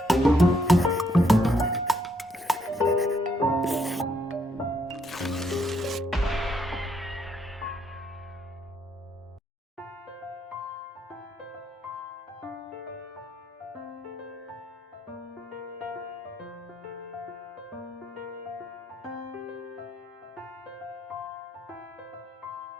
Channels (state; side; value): normal; both; correlation 0.73